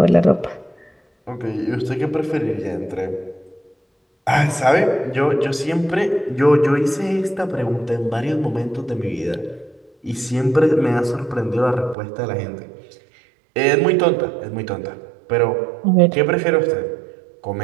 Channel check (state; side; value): drops out; left; at 12.0 s